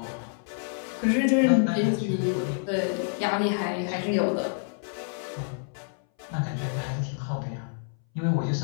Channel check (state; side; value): silent; right; 60 dB below the other